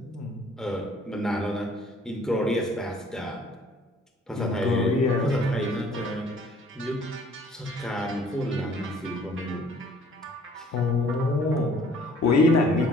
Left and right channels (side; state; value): both; normal; correlation 0.56